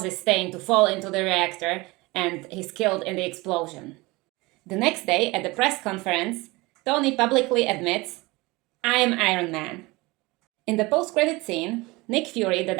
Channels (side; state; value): left; quieter; 22.9 dB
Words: Stane to fall into the reactor, and he's killed in the explosion. The next day, at the press conference, Tony publicly admits, "I am Iron Man." In the post-credit scene, Nick Fury, the